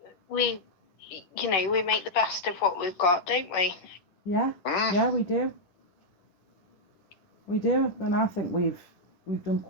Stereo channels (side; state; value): right; late; 10 ms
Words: we make the best of what we've got, don't we? Yeah, yeah, we do. We do, and I think we've done